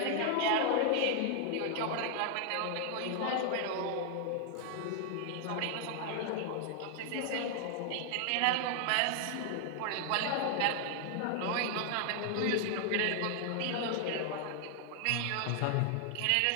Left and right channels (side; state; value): both; different; correlation 0.00